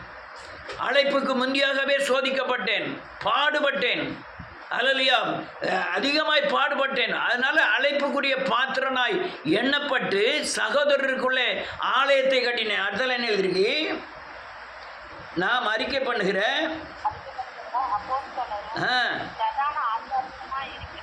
அழைப்புக்கு முந்தியாகவே சோதிக்கப்பட்டேன், பாடுபட்டேன், அல்லேலூயா அதிகமாய் பாடுபட்டேன். அதனால அழைப்புக்குரிய பாத்திரனாய் எண்ணப்பட்டு சகோதரருக்குள்ளே ஆலயத்தை கட்டினேன். அடுத்தல என்ன எழுதிருக்கு? நாம் அறிக்கை பண்ணுகிறேன்,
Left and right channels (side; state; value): both; identical; correlation 1.00